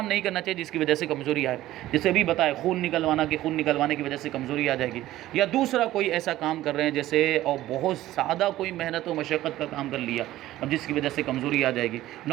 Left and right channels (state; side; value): quieter; left; 15.1 dB